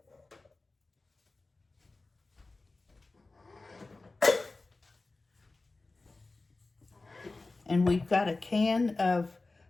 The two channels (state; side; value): quieter; right; 3.4 dB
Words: And we've got a can of